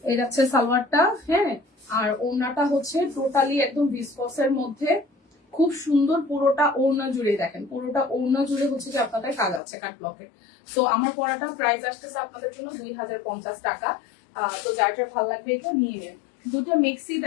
এই যাচ্ছে সালোয়ারটা। হ্যাঁ, আর ওড়নাটা হচ্ছে টোটালি একদম ভিসকসের মধ্যে, খুব সুন্দর। পুরোটা ওড়না জুড়ে দেখেন, পুরোটা ওড়না জুড়ে হচ্ছে যে আপনাদের কাজ আছে কাট ব্লকে। সো আমার পরাটা প্রাইস আসতেছে আপনাদের জন্য 2050 টাকা। তো যার যার ভালো লাগবে এটা নিয়ে নেন। দুটো মিক্সি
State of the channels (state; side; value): drops out; right; at 9.6 s